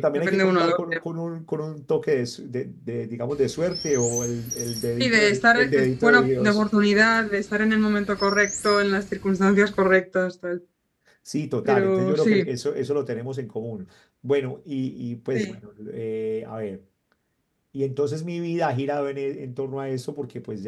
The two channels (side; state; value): both; identical; correlation 1.00